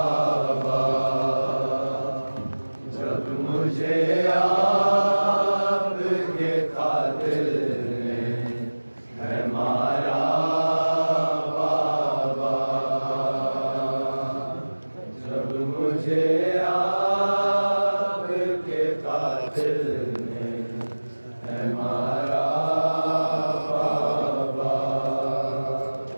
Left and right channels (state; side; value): inverted; both; correlation -1.00